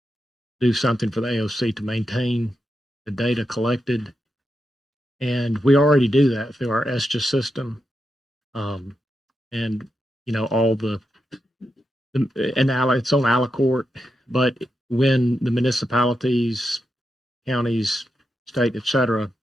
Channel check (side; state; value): both; normal; correlation 0.86